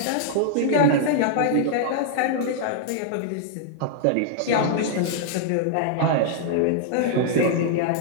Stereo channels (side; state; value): both; different; correlation -0.01